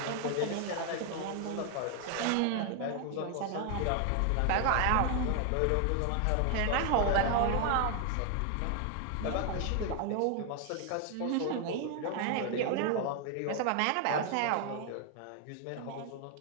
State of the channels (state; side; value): different; both; correlation 0.00